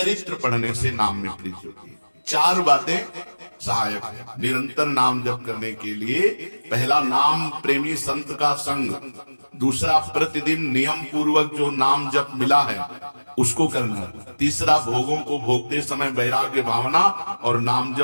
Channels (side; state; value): both; inverted; correlation -1.00